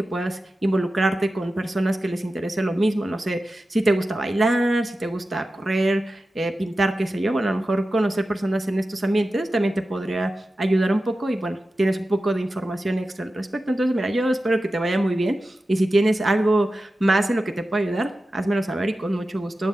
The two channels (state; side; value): normal; both; correlation 0.93